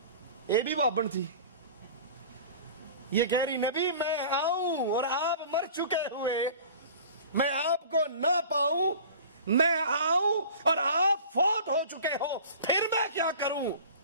یہ بھی بابن تھی، یہ کہہ رہی نبی میں آؤں اور آپ مر چکے ہوئے، میں آپ کو نہ پاؤں، میں آؤں اور آپ فوت ہو چکے ہو، پھر میں کیا کروں؟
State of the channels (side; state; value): both; inverted; correlation -0.41